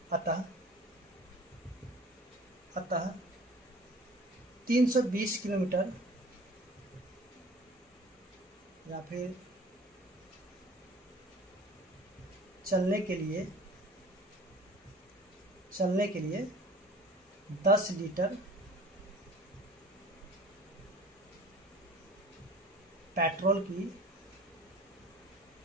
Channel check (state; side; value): normal; both; correlation 0.46